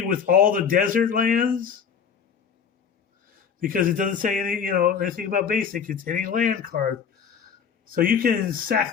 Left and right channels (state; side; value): quieter; right; 7.1 dB